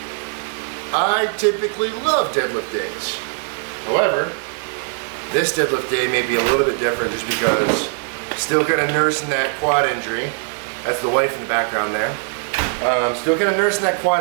I typically love deadlift days. However, this deadlift day may be a little bit different just because still kind of nursing that quad injury. That's the wife in the background there. Still kind of nursing that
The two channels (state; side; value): silent; left; 55 dB below the other